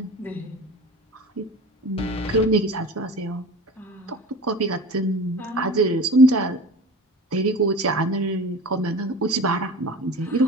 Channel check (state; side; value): normal; both; correlation 0.35